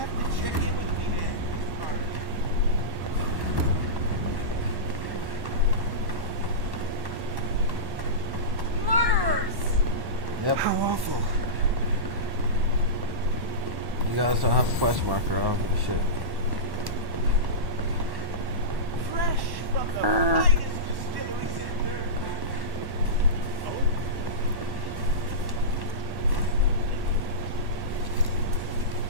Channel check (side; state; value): left; late; 1.1 ms